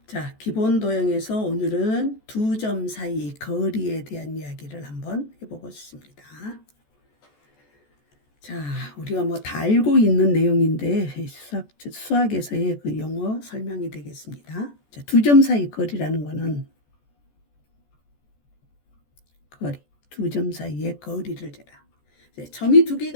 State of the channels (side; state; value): right; late; 14 ms